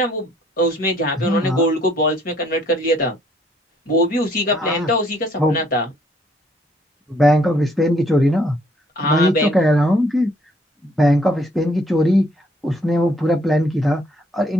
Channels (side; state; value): both; normal; correlation 0.65